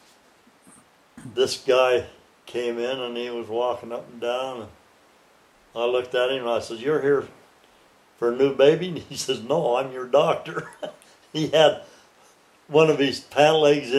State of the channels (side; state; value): both; identical; correlation 1.00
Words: this guy came in and he was walking up and down. And I looked at him and I said, "You're here for a new baby?" And he says, "No, I'm your doctor." He had one of his pant legs